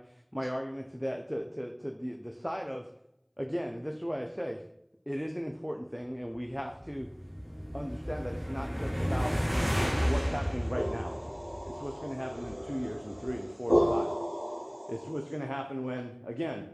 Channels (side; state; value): both; identical; correlation 1.00